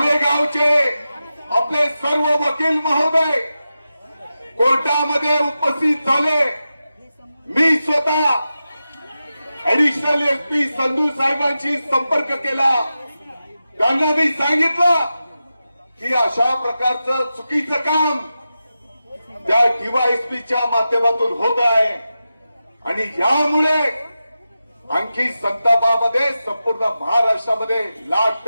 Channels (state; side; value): inverted; both; correlation -0.92